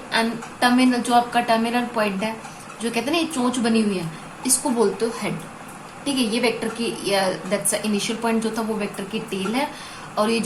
एंड टर्मिनल, जो आपका टर्मिनल पॉइंट है, जो कहते हैं ना ये चोंच बनी हुई है, इसको बोलते हो हेड. ठीक है. ये वेक्टर की दैट्स इनिशियल पॉइंट जो था वो वेक्टर की टेल है और ये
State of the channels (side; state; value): both; identical; correlation 1.00